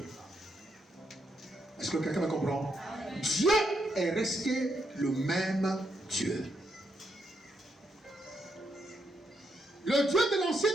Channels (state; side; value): normal; both; correlation 0.79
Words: Est-ce que quelqu'un me comprend? Dieu est resté le même Dieu. Le Dieu de l'Ancien